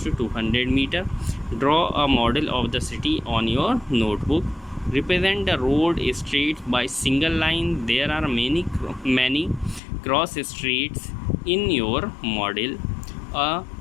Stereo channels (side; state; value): right; drops out; at 9.8 s